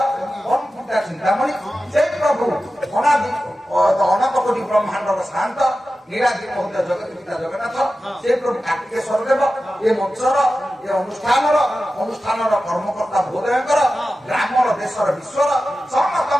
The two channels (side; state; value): both; normal; correlation 0.93